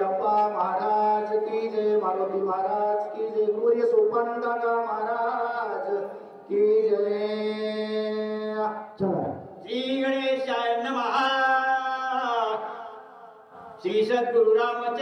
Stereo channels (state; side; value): identical; both; correlation 1.00